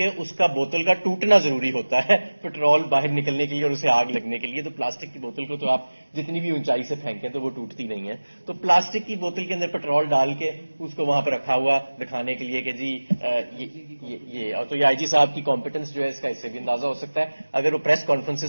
اس کا بوتل کا ٹوٹنا ضروری ہوتا ہے پیٹرول باہر نکلنے کے لیے اور اسے آگ لگنے کے لیے. تو پلاسٹک کی بوتل کو تو آپ جتنی بھی اونچائی سے پھینکیں تو وہ ٹوٹتی نہیں ہے. تو پلاسٹک کی بوتل کے اندر پیٹرول ڈال کے اس کو وہاں پہ رکھا ہوا دکھانے کے لیے کہ جی یہ اور تو یہ آئی جی صاحب کی کمپیٹنس جو ہے اس کا اس سے بھی اندازہ ہو سکتا ہے. اگر وہ پریس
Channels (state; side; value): inverted; both; correlation -1.00